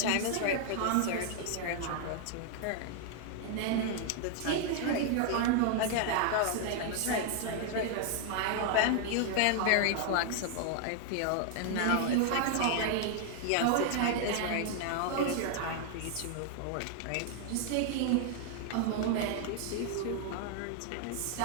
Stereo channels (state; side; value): different; both; correlation 0.00